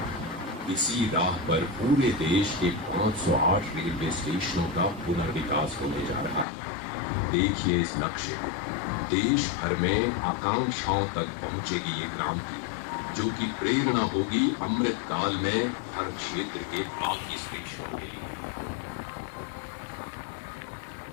इसी राह पर पूरे देश के 508 रेलवे स्टेशनों का पुनर्विकास होने जा रहा है। देखिए इस नक्शे को, देश भर में आकांक्षाओं तक पहुंचेगी ये क्रांति, जो कि प्रेरणा होगी अमृत काल में हर क्षेत्र के बाकी स्टेशनों के लिए।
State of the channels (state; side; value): drops out; right; at 6.5 s